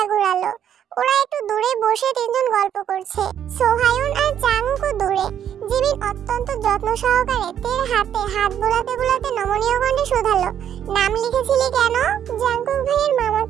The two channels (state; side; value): quieter; left; 9.6 dB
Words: ঘুরালো। ওরা একটু দূরে বসে তিনজন গল্প করছে, সোহায়ন আর চাংউকও দূরে। জিমিন অত্যন্ত যত্ন সহকারে তের হাতে হাত বোলাতে বোলাতে নমনীয় কণ্ঠে শুধালো, নাম লিখেছিলি কেন? জাঙ্কুক ভাইয়ের